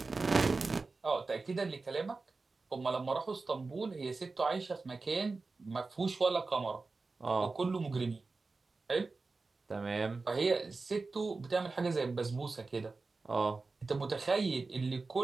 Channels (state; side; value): quieter; left; 3.8 dB